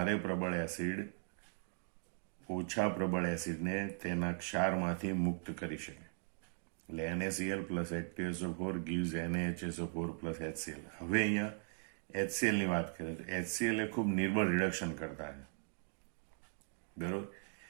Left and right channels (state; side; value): silent; left; 52 dB below the other